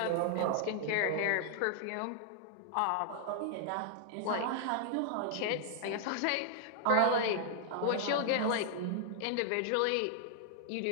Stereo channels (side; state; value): both; different; correlation -0.01